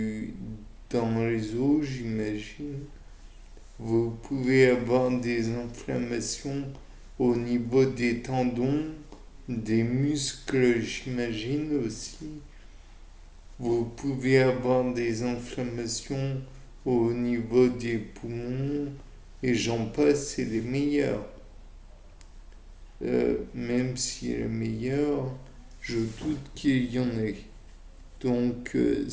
dans les os, j'imagine. Vous pouvez avoir des inflammations au niveau des tendons, des muscles, j'imagine aussi. Vous pouvez avoir des inflammations au niveau des poumons et j'en passe, c'est les meilleurs. Même si les meilleurs, je doute qu'il y en ait. Donc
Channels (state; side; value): identical; both; correlation 1.00